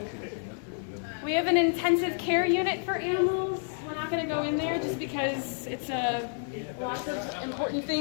we have an intensive care unit for animals. We're not going to go in there just because it's lots of important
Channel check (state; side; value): silent; right; digital silence